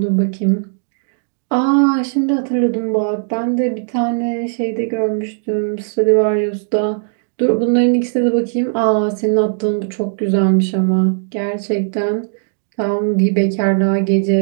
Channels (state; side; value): silent; left; 67 dB below the other